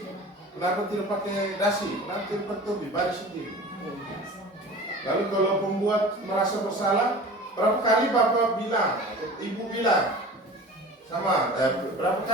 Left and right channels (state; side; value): normal; both; correlation 0.39